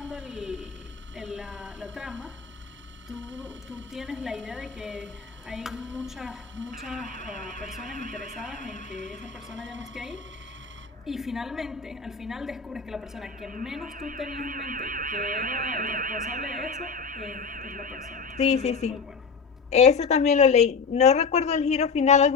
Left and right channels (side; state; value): right; quieter; 5.4 dB